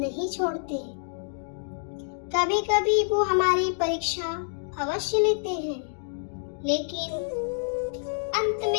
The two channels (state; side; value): silent; right; digital silence